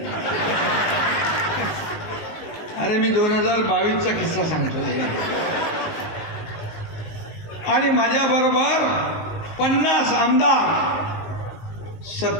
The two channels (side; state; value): right; late; 19 ms